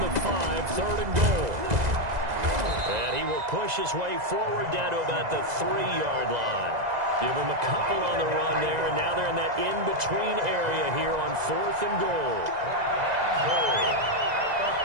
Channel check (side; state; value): left; late; 2.0 ms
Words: 5, 3rd and goal. And he will push his way forward down to about the 3-yard line. Give him a couple on the run there, and now they're in that in-between area here on 4th and goal. Goal at